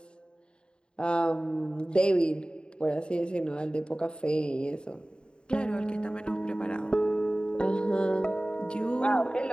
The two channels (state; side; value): late; right; 0.050 ms